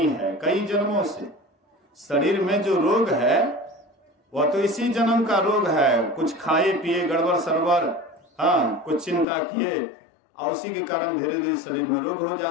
है, कई जन्मों से। शरीर में जो रोग है वह तो इसी जन्म का रोग है। कुछ खाए पिए गड़बड़ सड़बड़, हाँ, कुछ चिंता किए, और उसी के कारण धीरे धीरे शरीर में रोग हो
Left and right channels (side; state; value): right; drops out; at 9.2 s